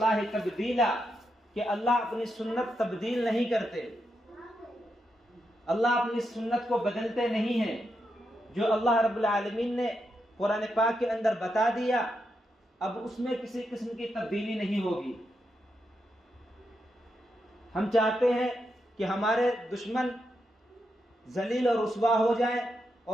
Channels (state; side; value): normal; both; correlation 0.84